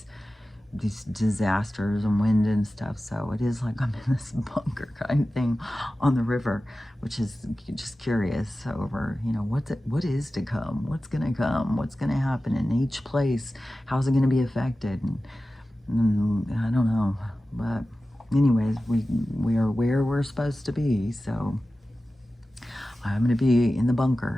these disasters and wind and stuff. So it is like I'm in this bunker kind of thing on the river, which is just curious over, you know, what is to come, what's going to come, what's going to happen in each place, how's it going to be affected, and I don't know. But anyways, we are where we're supposed to be. So I'm going to be in the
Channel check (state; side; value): normal; both; correlation 0.95